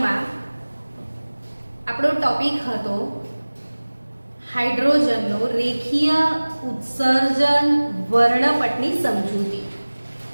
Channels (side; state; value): both; inverted; correlation -1.00